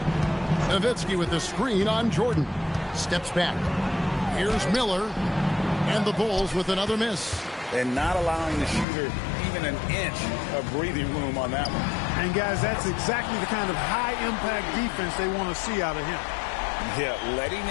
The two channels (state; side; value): drops out; right; at 8.8 s